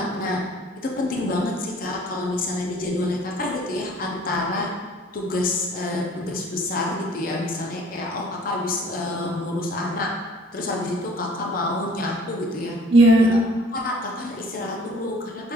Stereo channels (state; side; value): normal; both; correlation 0.52